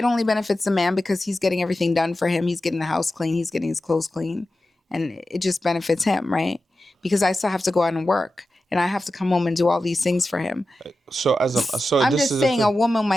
only benefits the man because he's getting everything done for him. He's getting the house clean. He's getting his clothes clean. And it just benefits him, right? Because I still have to go out and work. And I have to come home and do all these things for him. So I'm this just is the saying a thing. woman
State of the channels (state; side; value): normal; both; correlation 0.93